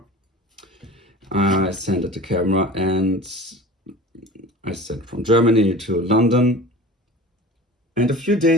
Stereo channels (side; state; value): both; normal; correlation 0.38